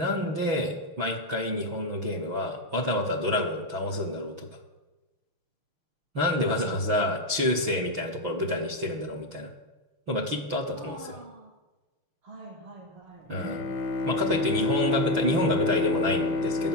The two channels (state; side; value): late; left; 6.1 ms